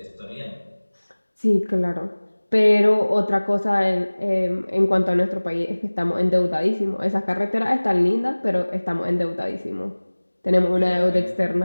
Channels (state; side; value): inverted; both; correlation -1.00